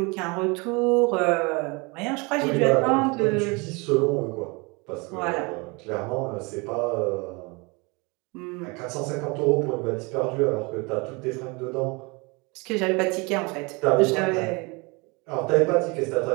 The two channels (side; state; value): left; quieter; 28.0 dB